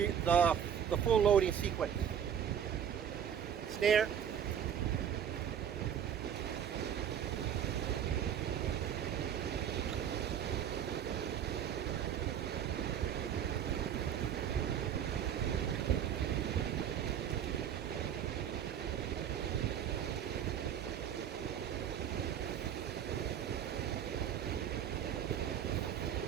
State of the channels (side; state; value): left; quieter; 8.9 dB